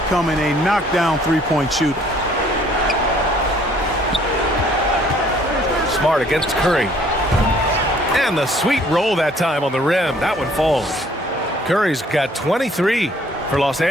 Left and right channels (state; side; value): normal; both; correlation 0.59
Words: a knockdown three-point shooter. Smart against Curry. And the sweet roll that time on the rim. That one falls. Curry's got 23 for Los